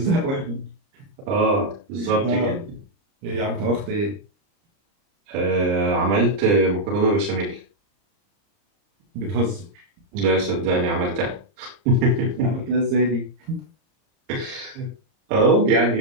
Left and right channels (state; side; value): late; left; 30 ms